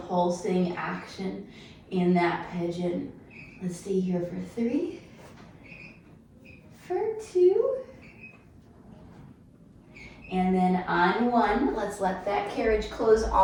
pulsing action in that pigeon. Let's stay here for 3, for 2, and then on 1, let's let that carriage close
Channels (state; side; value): identical; both; correlation 1.00